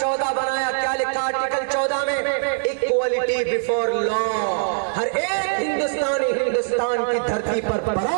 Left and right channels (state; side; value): silent; left; digital silence